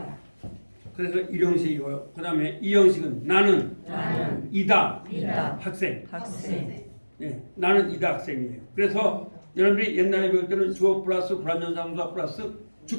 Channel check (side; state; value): both; inverted; correlation -1.00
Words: 그래서 1형식이고요. 그 다음에 2형식은 나는 이다. 학생. 예, 나는 이다 학생이에요. 그래서 여러분들이 옛날에 배울 때는 주어 플러스 불완전자동사 플러스